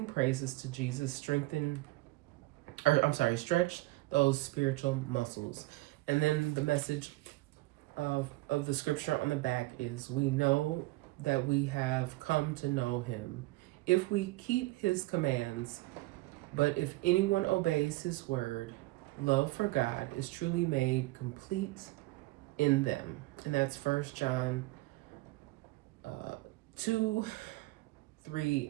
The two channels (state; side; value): quieter; left; 20.7 dB